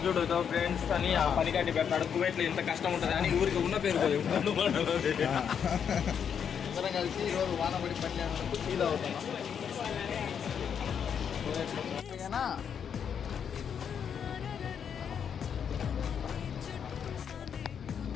చూడు ఫ్రెండ్స్ అని ఆ పని కట్టి పెడతాడు. కువైట్లో ఇంత కష్టం ఉంటుంది అని ఊరికి ఉన్న పేరు అందరం కలిసి ఈరోజు వాన పడి పని చేసినందుకు ఫీల్ అవుతున్నాం.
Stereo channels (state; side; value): quieter; right; 7.7 dB